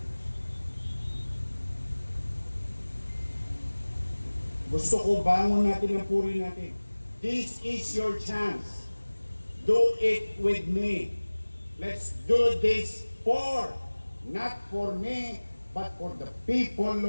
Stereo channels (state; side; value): inverted; both; correlation -1.00